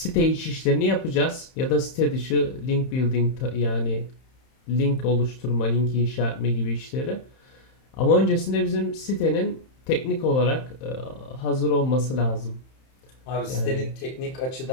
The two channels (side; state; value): right; late; 31 ms